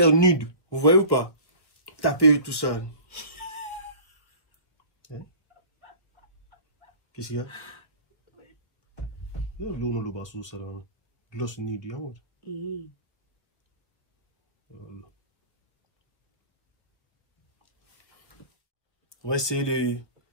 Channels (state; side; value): late; right; 1.2 ms